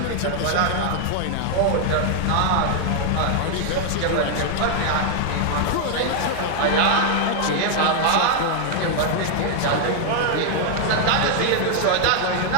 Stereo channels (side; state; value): both; different; correlation 0.00